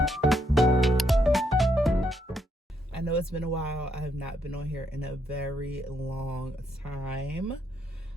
I know it's been a while. I have not been on here in a very long time.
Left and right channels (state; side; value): normal; both; correlation 0.76